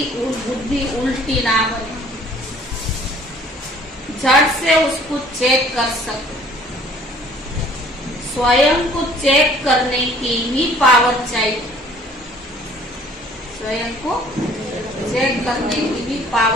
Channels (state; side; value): normal; both; correlation 0.55